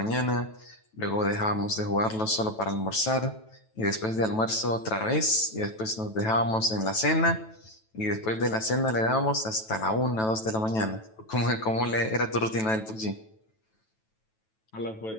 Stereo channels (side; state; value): right; late; 9.2 ms